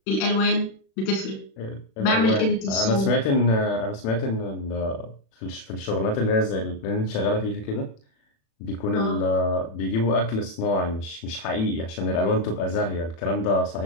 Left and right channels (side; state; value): right; late; 36 ms